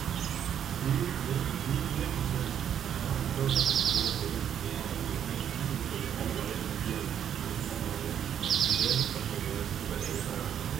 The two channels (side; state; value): left; quieter; 9.2 dB